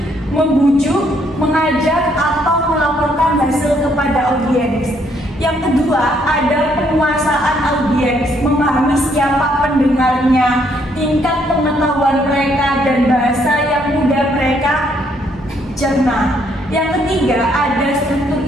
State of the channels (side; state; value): both; normal; correlation 0.70